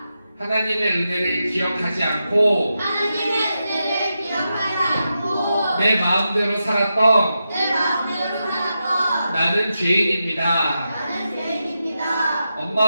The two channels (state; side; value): inverted; both; correlation -0.88